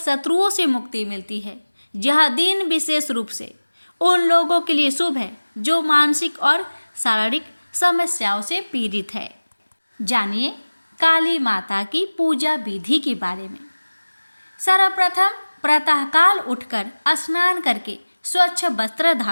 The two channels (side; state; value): both; inverted; correlation -1.00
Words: से मुक्ति मिलती है। यह दिन विशेष रूप से उन लोगों के लिए शुभ है जो मानसिक और शारीरिक समस्याओं से पीड़ित है। जानिए काली माता की पूजा विधि के बारे में। सर्वप्रथम प्रातःकाल उठकर स्नान करके स्वच्छ वस्त्र